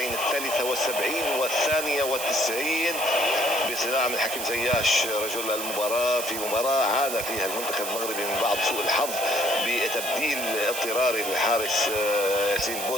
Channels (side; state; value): right; noise; hiss, 5 dB below the sound